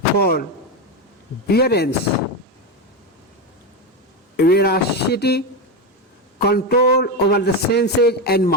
forbearance, veracity, control over the senses and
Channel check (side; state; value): both; normal; correlation 0.13